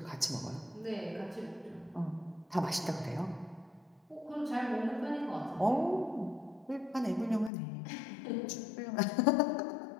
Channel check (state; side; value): drops out; right; at 7.5 s